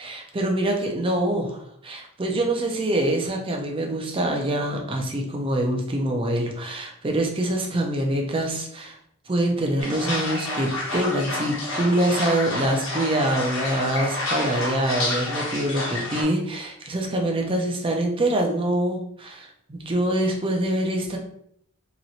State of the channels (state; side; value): normal; both; correlation 0.47